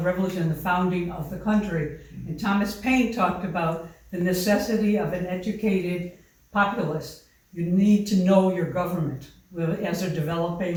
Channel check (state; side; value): identical; both; correlation 1.00